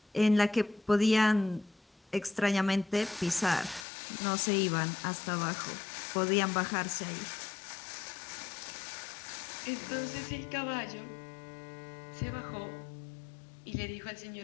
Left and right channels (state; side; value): drops out; right; at 3.9 s